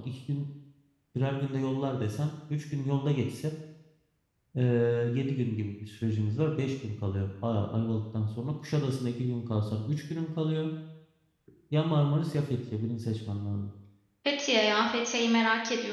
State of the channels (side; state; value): both; identical; correlation 1.00